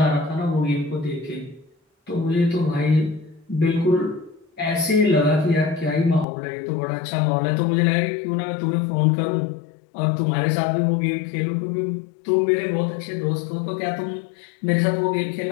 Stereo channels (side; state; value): right; drops out; at 6.2 s